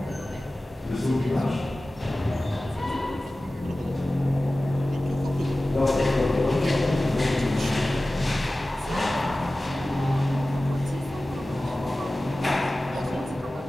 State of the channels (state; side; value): normal; both; correlation 0.96